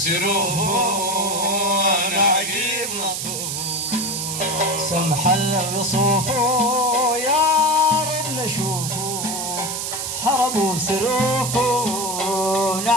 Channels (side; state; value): right; noise; hiss, 3 dB below the sound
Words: انا عجيب لطوفه سمح الوصوفه يا رب نشوفه حرموا سروفه